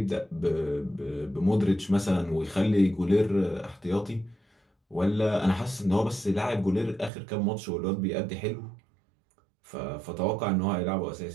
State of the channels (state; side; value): drops out; left; at 7.1 s